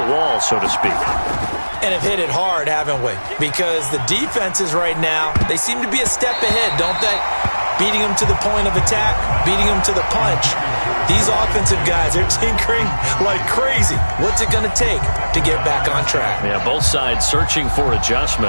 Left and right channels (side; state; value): both; inverted; correlation -1.00